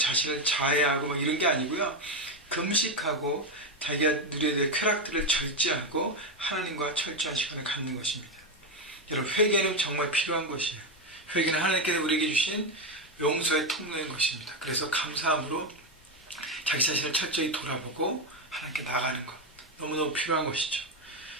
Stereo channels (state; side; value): normal; both; correlation 0.09